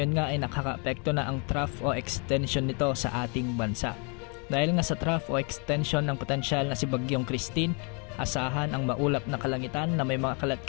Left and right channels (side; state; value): right; quieter; 35.2 dB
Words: nga ay nakaka-apekto na ang trough o extension nito sa ating bansa. Dahil nga sa trough o extension ng potensyal na si Bagyong Christine, asahan ang maulap na kalangitan na may mga